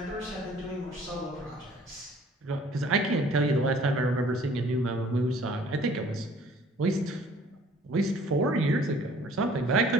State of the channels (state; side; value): normal; both; correlation 0.54